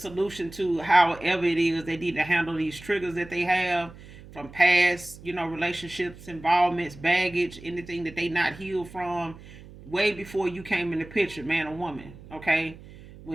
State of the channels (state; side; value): noise; right; hum, 18 dB below the sound